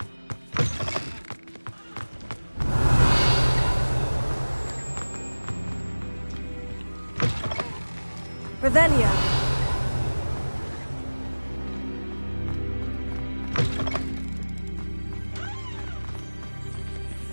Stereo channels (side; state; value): both; inverted; correlation -1.00